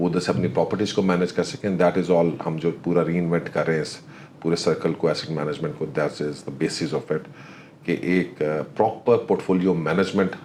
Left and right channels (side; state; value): both; identical; correlation 1.00